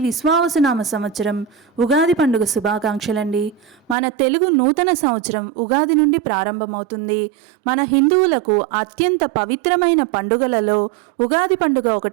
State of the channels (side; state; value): left; drops out; at 4.0 s